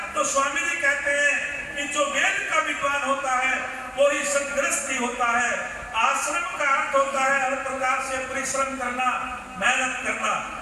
तो स्वामी जी कहते हैं कि जो वेद का विद्वान होता है वो ही सदगृहस्थी होता है। आश्रम का अर्थ होता है हर प्रकार से परिश्रम करना, मेहनत करना।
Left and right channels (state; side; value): identical; both; correlation 1.00